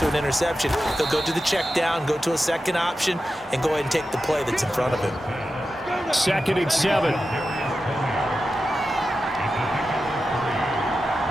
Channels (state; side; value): normal; both; correlation 0.91